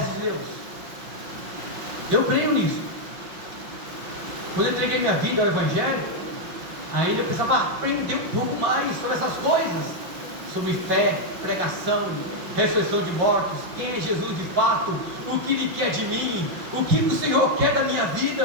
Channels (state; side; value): late; left; 5.7 ms